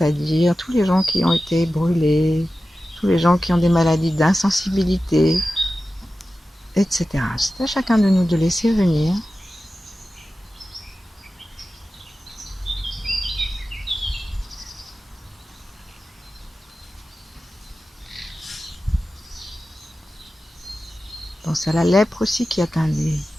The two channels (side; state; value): both; normal; correlation 0.94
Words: tous les gens qui ont été brûlés, tous les gens qui ont des maladies d'insensibilité, etc. C'est à chacun de nous de laisser venir. Pense à la lèpre aussi qui atteint des